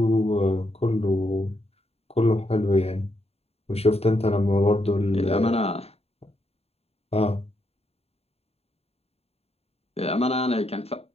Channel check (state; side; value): late; right; 0.29 ms